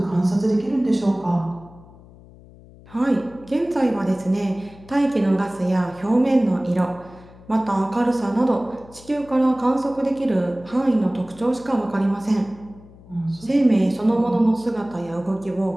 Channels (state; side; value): noise; left; hum, 22 dB below the sound